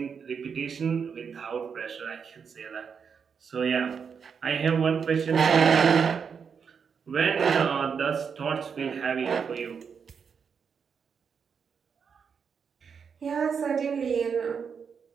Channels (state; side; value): quieter; left; 6.4 dB